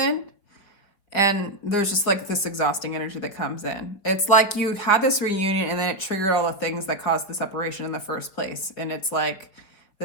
and there's just like this exhausting energy that comes in. It's like you had this reunion and then it triggered all the things that caused the separation in the first place. And it's like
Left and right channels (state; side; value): late; right; 4.9 ms